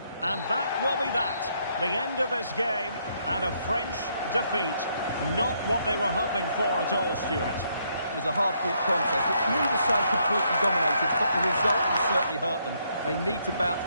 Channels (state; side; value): inverted; both; correlation -0.73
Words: And that will be that. The end of this game, and a French defeat. Not what they were hoping for at all, Stuart. It was a hard-fought contest, which neither side completely dominated, but the result will certainly hurt them. They need to bounce